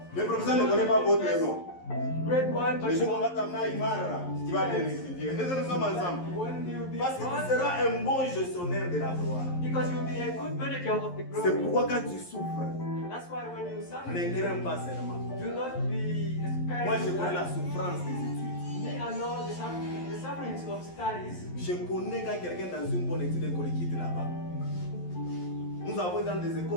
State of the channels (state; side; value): late; right; 11 ms